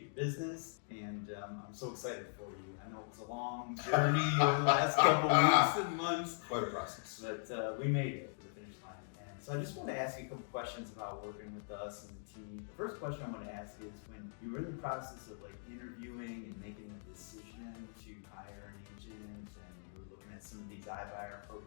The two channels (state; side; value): silent; right; digital silence